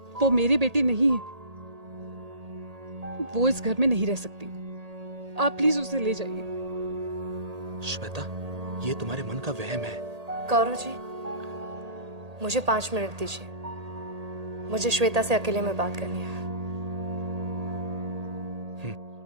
वो मेरी बेटी नहीं है। वो इस घर में नहीं रह सकती। आप प्लीज उसे ले जाइए। श्वेता, ये तुम्हारे मन का वहम है। गौरव जी, मुझे 5 मिनट दीजिए। मुझे श्वेता से अकेले में बात करनी है।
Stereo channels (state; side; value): late; left; 1.8 ms